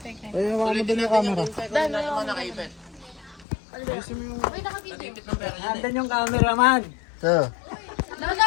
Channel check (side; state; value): right; drops out; at 3.5 s